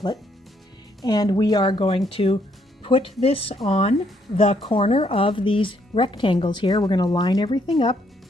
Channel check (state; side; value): normal; both; correlation 0.71